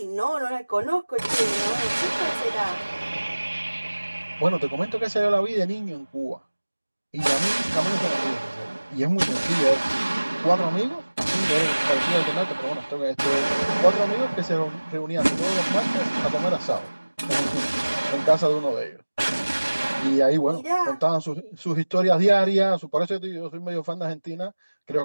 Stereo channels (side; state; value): both; inverted; correlation -1.00